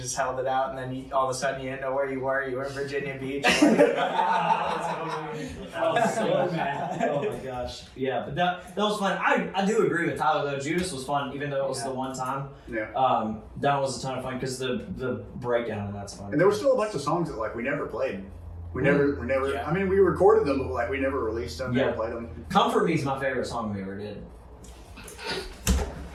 held it out, and then all of a sudden you didn't know where you were. You were in Virginia Beach. I was so mad. Oh my gosh. Yeah, but that was fun. I do agree with Tyler though. Judas was fun, even though it was the one time. Yeah. That was a ton of fun because the breakdown and that's fun. And there were still a bunch of songs that like we never played. We never. I mean, we recorded them, but like we never released them. Never played them. Comfort Me is my favorite song we ever did.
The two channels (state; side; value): identical; both; correlation 1.00